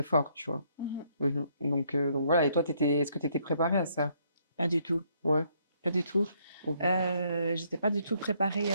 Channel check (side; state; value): both; inverted; correlation -0.69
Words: fort, tu vois? Mmh. Donc voilà. Et toi, est-ce que tu étais préparée à ça? Pas du tout, Ouais, pas du tout. OK. J'étais pas du tout préparée,